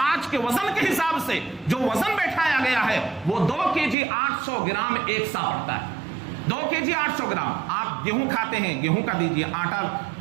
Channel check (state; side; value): drops out; left; at 4.0 s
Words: آج کے وزن کے حساب سے جو وزن بیٹھایا گیا ہے وہ 2 kg 800 گرام ایک سا پڑتا ہے. 2 kg 800 گرام. آپ گیہوں کھاتے ہیں, گیہوں کا دیجیے, آٹا